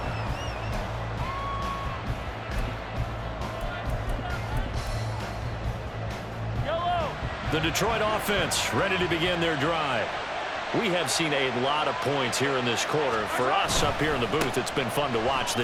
The Detroit offense ready to begin their drive. We have seen a lot of points here in this quarter. For us up here in the booth, it's been fun to watch.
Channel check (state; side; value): identical; both; correlation 1.00